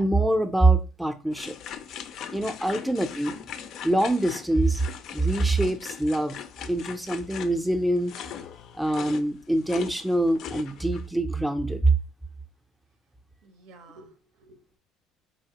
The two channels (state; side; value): normal; both; correlation 0.87